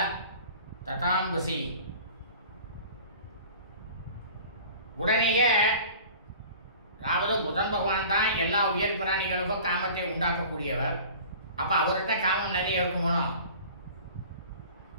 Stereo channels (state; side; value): inverted; both; correlation -0.43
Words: ததாம்பசி. உடனேயே, அதாவது புதன் பகவான் தான் எல்லா உயர் பிராணிகளுக்கும் காமத்தை உண்டாக்கக்கூடியவர். அப்ப அவர்கிட்ட காமம் நிறைய இருக்குமோ.